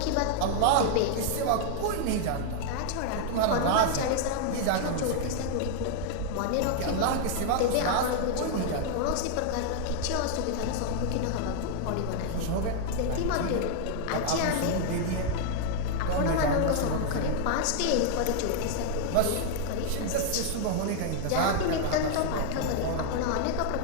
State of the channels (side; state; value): both; different; correlation 0.00